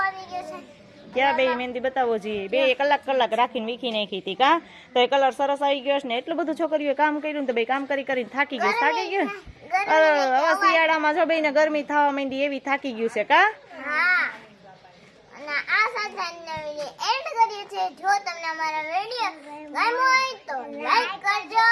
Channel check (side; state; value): both; identical; correlation 1.00